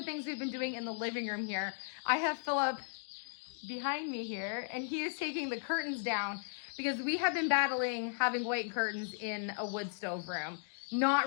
things we've been doing in the living room here. I have Philip behind me here, and he is taking the curtains down because we have been battling having white curtains in a wood stove room. Not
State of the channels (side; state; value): right; silent; digital silence